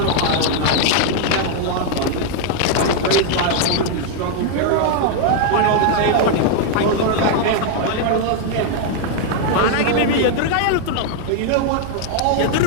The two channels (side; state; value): both; different; correlation 0.00